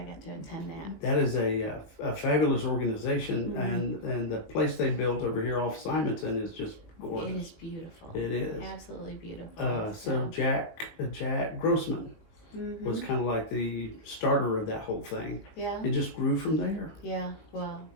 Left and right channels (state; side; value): late; right; 18 ms